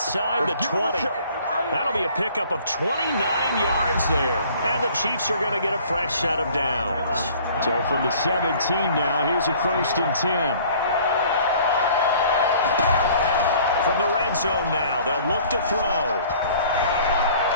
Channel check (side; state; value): both; inverted; correlation -0.53